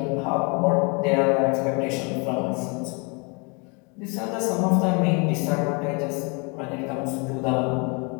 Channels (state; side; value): quieter; right; 32.1 dB